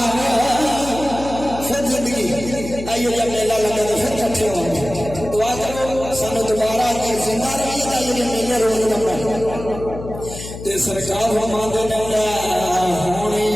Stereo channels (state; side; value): noise; left; hum, 11 dB below the sound